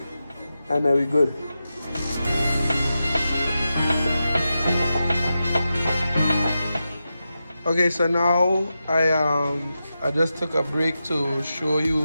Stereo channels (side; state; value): both; inverted; correlation -0.90